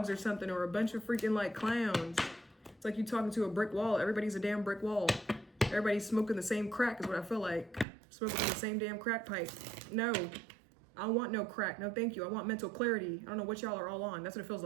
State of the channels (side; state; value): left; drops out; at 7.9 s